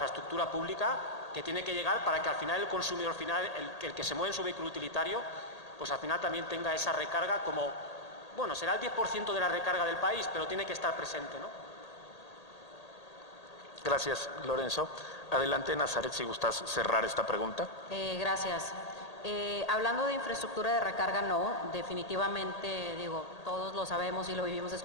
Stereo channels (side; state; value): right; late; 1.8 ms